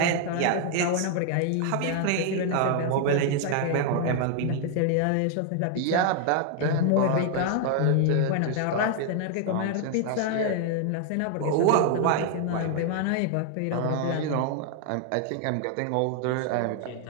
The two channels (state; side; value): different; both; correlation 0.00